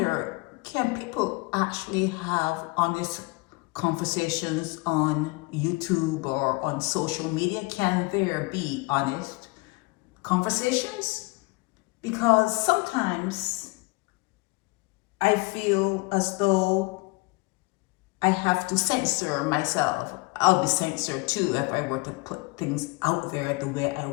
can people actually have honest conversations on YouTube or on social media? Can there be honest conversations? Because sometimes I feel as though I have to censor myself. I'll be censored too if I were to put things out there the way I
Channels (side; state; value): right; quieter; 26.0 dB